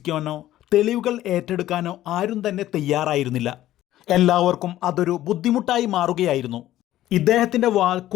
തെളിവുകൾ ഏറ്റെടുക്കാനോ ആരും തന്നെ തയ്യാറായിരുന്നില്ല. എല്ലാവർക്കും അതൊരു ബുദ്ധിമുട്ടായി മാറുകയായിരുന്നു. ഇദ്ദേഹത്തിൻ്റെ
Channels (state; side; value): quieter; right; 13.9 dB